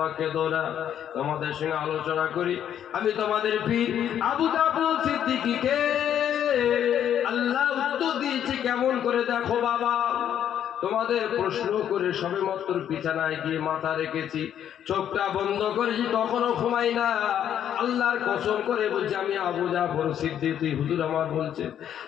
কেঁদো না, তোমাদের সঙ্গে আলোচনা করি। আমি তোমাদের পীর আবু জাফর সিদ্দিকীকে আল্লাহ উত্তর দিয়েছে কেমন করে দেখো বাবা। তোমাদের প্রশ্ন করে সবেমাত্র বিছানায় গিয়ে মাথা রেখেছি, চোখটা বন্ধ করেছি, তখনও ঘুমাই না। আল্লাহর কসম করে বলছি, আমি আবু জাফর সিদ্দিকী, হুজুর আমার বলছে,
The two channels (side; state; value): right; quieter; 9.9 dB